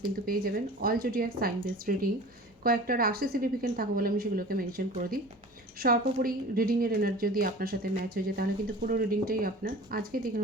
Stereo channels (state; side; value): normal; both; correlation 0.40